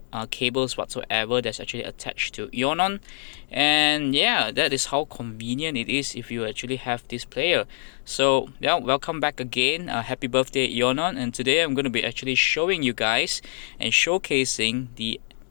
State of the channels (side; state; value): right; silent; digital silence